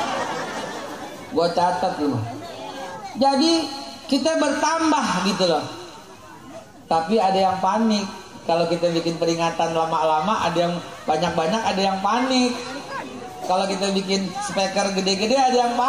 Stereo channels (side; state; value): both; identical; correlation 1.00